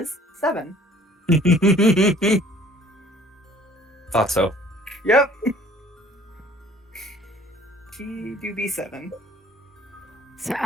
7. Thought so. Yep. She do be 7. So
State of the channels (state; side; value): normal; both; correlation 0.54